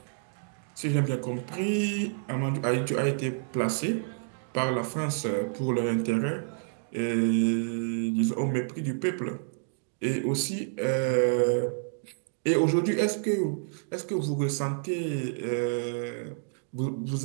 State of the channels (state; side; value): silent; left; digital silence